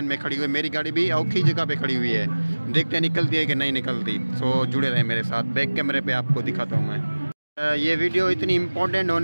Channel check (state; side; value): inverted; both; correlation -1.00